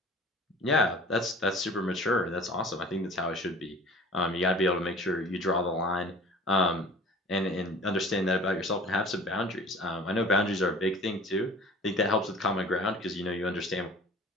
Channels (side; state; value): both; normal; correlation 0.44